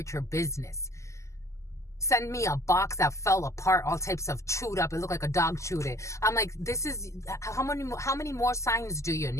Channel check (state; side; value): late; right; 0.14 ms